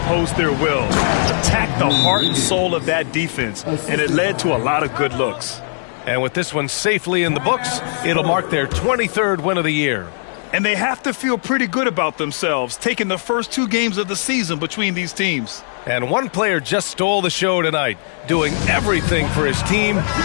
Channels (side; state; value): right; silent; digital silence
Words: their will, attack the heart and soul of that defense, and it led to a lot of good looks. And with this one safely in the books, it'll mark their 23rd win of the year. And they have to feel pretty good about themselves, taking the first 2 games of the season between these teams. And one player just stole the show tonight, doing everything for his team.